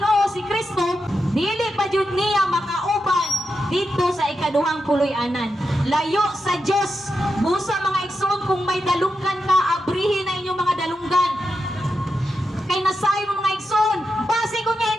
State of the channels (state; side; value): normal; both; correlation 0.87